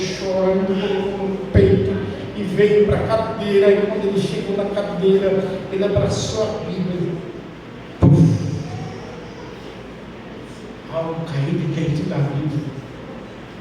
colocou no peito e veio para a cadeira. E quando ele chegou na cadeira, ele abraçou a Bíblia. Puf! Algo caiu de dentro da Bíblia.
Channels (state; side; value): identical; both; correlation 1.00